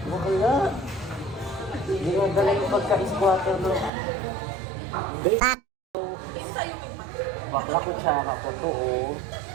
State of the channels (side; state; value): left; drops out; at 3.9 s